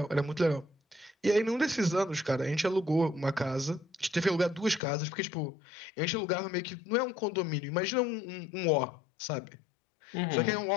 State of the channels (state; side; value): drops out; right; at 4.8 s